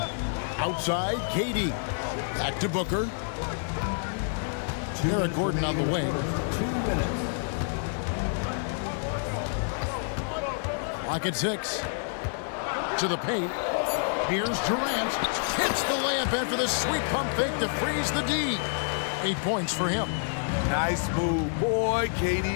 Outside, KD. Back to Booker. Eric Gordon on the wing. 2 minutes. Clock at 6. To the paint. Here's Durant. Hits the layup in for the sweet pump fake to freeze the D. 8 points for him. Nice move. Boy,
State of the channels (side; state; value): right; silent; digital silence